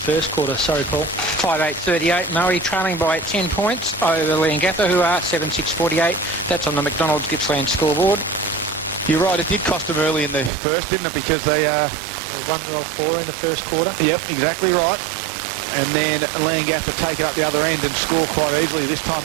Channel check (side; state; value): left; drops out; at 10.5 s